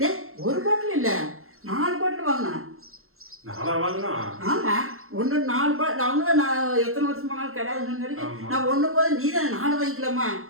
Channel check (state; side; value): late; left; 0.62 ms